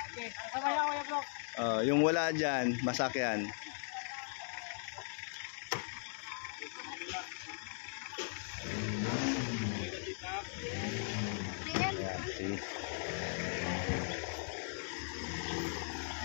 Yung wala dyan, masakyan. Ayan, see.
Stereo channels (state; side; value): silent; right; digital silence